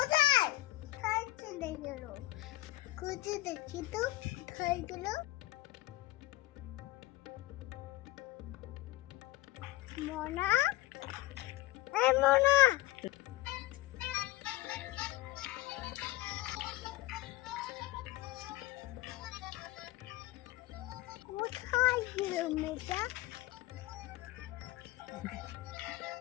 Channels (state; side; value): quieter; right; 18.1 dB